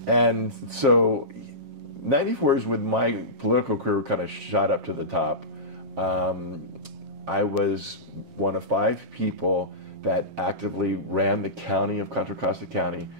And so, '94 is when my political career kind of shot up to the top. I was one of 5 people that actively ran the county of Contra Costa County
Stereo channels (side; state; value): left; late; 7.4 ms